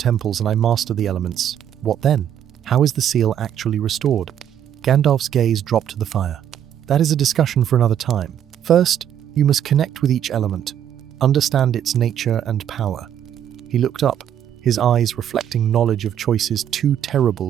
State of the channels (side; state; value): left; quieter; 9.9 dB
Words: and I master the elements, what then? How is the seal actually restored? Gandalf's gaze dropped to the fire. That is a discussion for another time. First, you must connect with each element, understand its nature and power. He looked up, his eyes reflecting knowledge of choices too